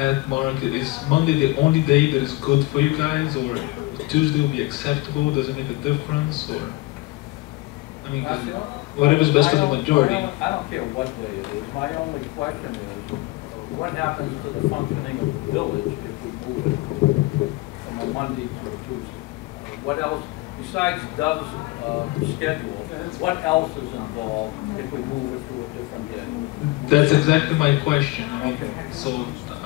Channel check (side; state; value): right; quieter; 20.6 dB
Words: Mark, is Monday the only day that is good for you guys, or Tuesday will be acceptable? Does it make a difference, or I mean, whatever's best for the majority? I don't care what day it is. My only question is, what happens to the functioning of the village if we move it from a Monday to a Tuesday? What else, besides Dove's schedule, what else is involved if we move it to a different day? That's exactly my question. I mean, so